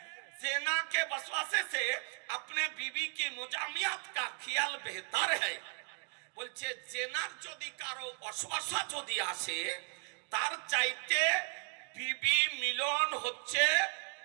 ज़िना के वसवासे से अपने बीवी की मुजामियात का ख्याल बेहतर है। বলছে জেনার যদি কারো অশ্বাসা যদি আসে তার চাইতে বিবি মিলন হচ্ছে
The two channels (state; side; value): quieter; left; 34.7 dB